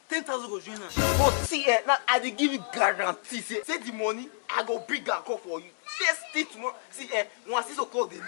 10,000 go join us. But see, now I dey give you guarantee. Say the money, I go bring and call for you. First thing tomorrow. See, once 6 o'clock the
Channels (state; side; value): silent; right; digital silence